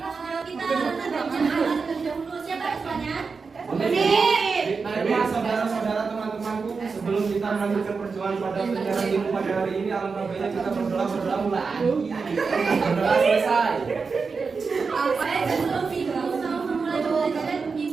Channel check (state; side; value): quieter; left; 4.9 dB